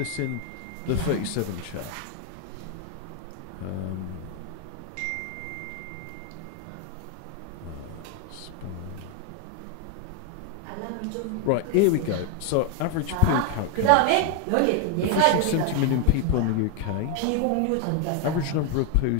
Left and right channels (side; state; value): both; different; correlation 0.01